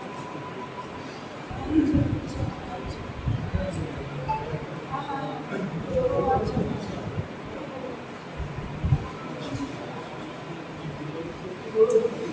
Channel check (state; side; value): identical; both; correlation 1.00